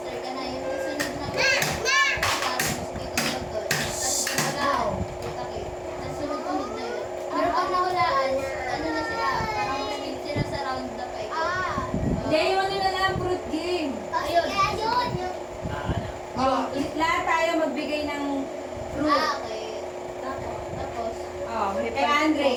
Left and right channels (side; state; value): both; identical; correlation 1.00